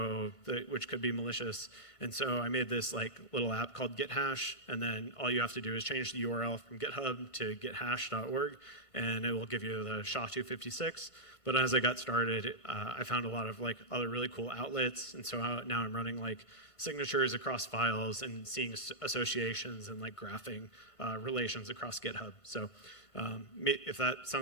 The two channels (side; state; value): right; late; 2.2 ms